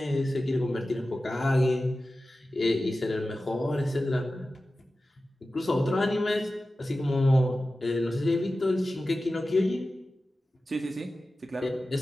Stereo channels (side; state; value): both; normal; correlation 0.94